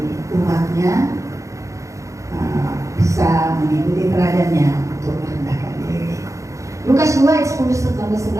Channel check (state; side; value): late; left; 0.15 ms